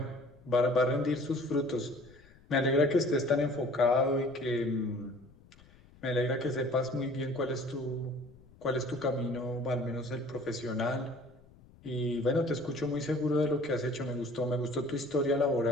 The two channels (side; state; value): left; noise; rumble, 25 dB below the sound